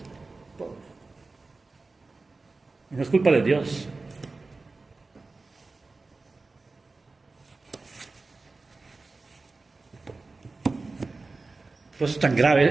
Y no es culpa de Dios. Por eso es tan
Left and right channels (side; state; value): left; quieter; 3.6 dB